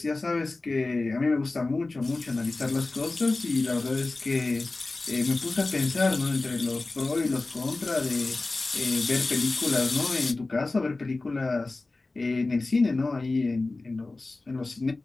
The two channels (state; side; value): quieter; right; 3.3 dB